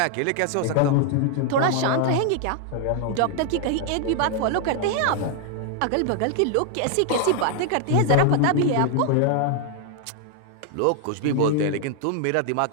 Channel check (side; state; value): both; different; correlation 0.00